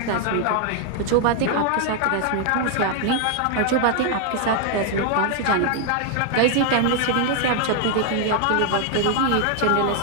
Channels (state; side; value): different; both; correlation 0.00